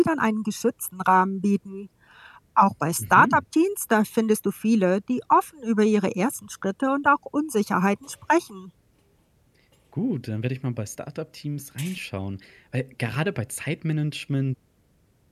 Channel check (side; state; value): both; identical; correlation 1.00